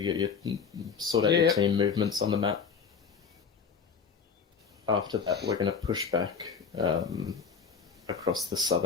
get your sort out your team movements on the map. After that, we're going to push back across the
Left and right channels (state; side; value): quieter; right; 6.0 dB